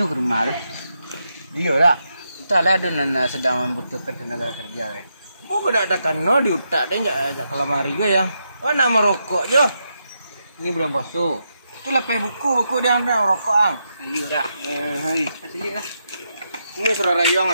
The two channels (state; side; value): inverted; both; correlation -0.83